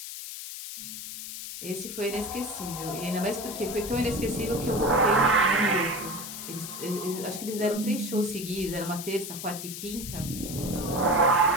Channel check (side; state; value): left; noise; hiss, 9 dB below the sound